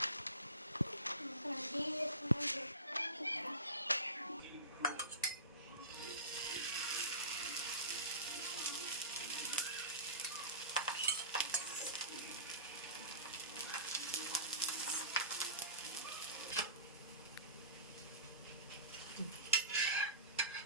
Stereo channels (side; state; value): both; inverted; correlation -0.33